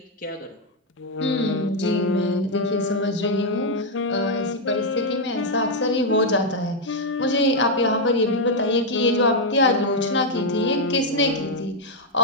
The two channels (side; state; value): both; normal; correlation 0.00